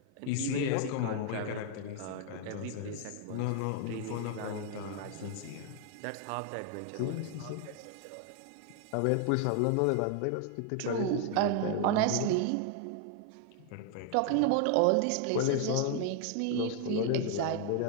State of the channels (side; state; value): both; different; correlation 0.00